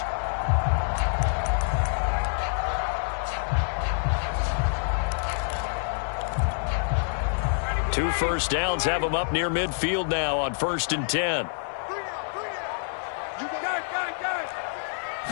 Two first downs have him up near midfield now on 1st and 10.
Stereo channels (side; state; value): right; silent; digital silence